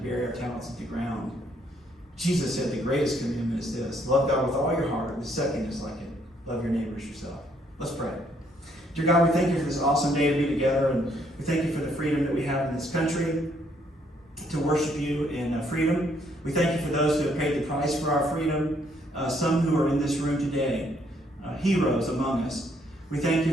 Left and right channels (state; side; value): normal; both; correlation 0.69